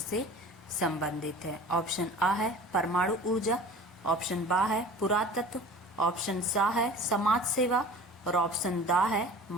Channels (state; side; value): normal; both; correlation 0.41